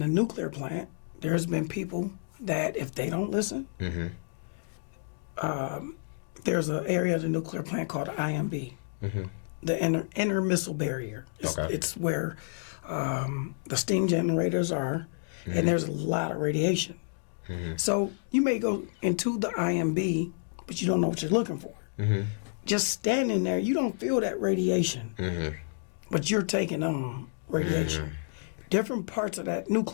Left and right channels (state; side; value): silent; right; digital silence